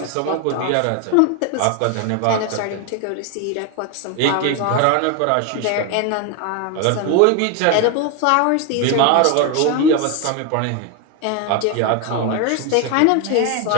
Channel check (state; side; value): different; both; correlation 0.01